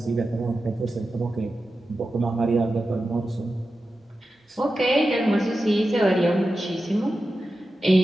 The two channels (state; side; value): normal; both; correlation 0.92